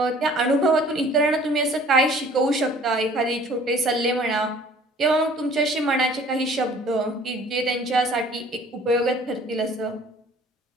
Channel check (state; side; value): normal; both; correlation 0.52